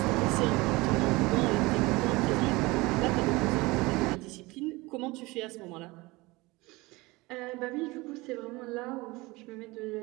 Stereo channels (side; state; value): left; quieter; 22.3 dB